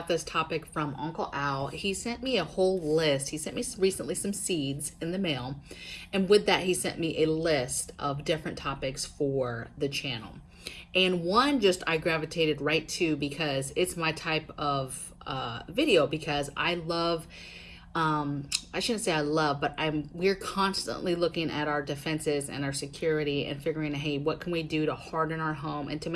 this topic from Uncle Al. He sent me a whole list. He sent me recently some seeds in the mail, and with that, he sent me a list of different topics for the channel. And one just I gravitated right to because it's my type of video, because I love I shouldn't say I love, but we're constantly looking at our defenses and our security and figuring, hey, what can we do to harden our home and to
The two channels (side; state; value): both; identical; correlation 1.00